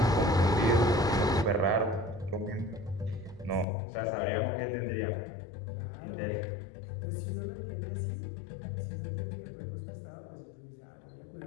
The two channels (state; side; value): drops out; right; at 3.7 s